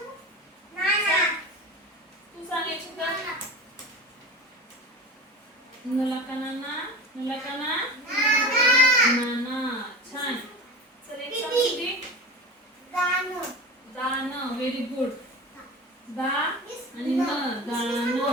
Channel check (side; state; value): both; normal; correlation 0.31